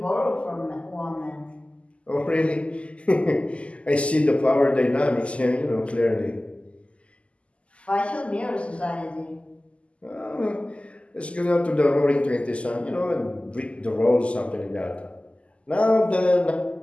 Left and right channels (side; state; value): right; late; 0.058 ms